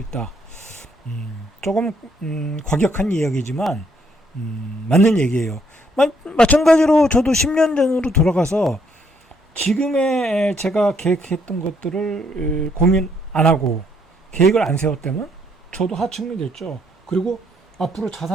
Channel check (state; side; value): normal; both; correlation 0.70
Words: 조금 과격한 이야기지만 맞는 얘기예요. 마찬가지로 저도 10년 전으로 돌아가서 지금의 제가 계획했던 것들을 고민 안 하고 계획을 안 세웠다면 저도 하층민이 됐죠. 그리고 앞으로